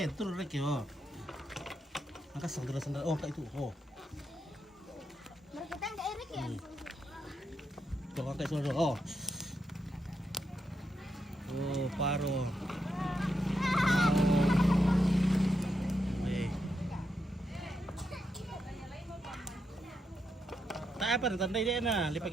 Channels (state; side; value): normal; both; correlation 0.83